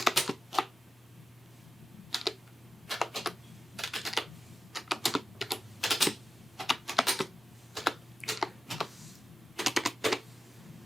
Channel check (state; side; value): normal; both; correlation 0.93